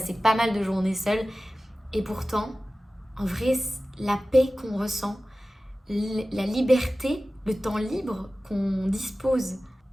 pas mal de journées seule. Et pourtant, en vrai, la paix qu'on ressent, la liberté, le temps libre qu'on dispose,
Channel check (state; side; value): normal; both; correlation 0.96